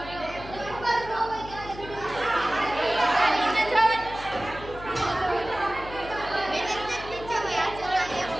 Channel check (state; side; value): noise; left; hum, 14 dB below the sound